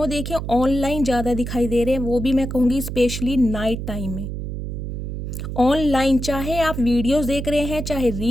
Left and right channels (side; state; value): right; noise; hum, 5 dB below the sound